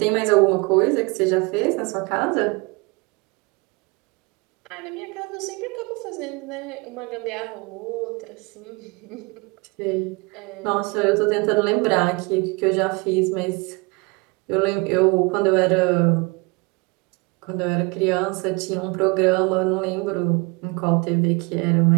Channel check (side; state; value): left; quieter; 27.9 dB